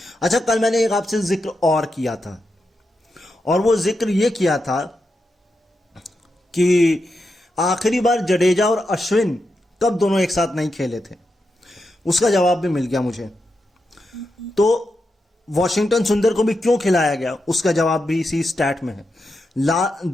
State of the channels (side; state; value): both; normal; correlation 0.87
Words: अच्छा, कल मैंने एक आपसे जिक्र और किया था, और वो जिक्र ये किया था कि आखिरी बार जडेजा और अश्विन कब दोनों एक साथ नहीं खेले थे। उसका जवाब भी मिल गया मुझे। तो वॉशिंगटन सुंदर को भी क्यों खिलाया गया, उसका जवाब भी इसी स्टैट में है।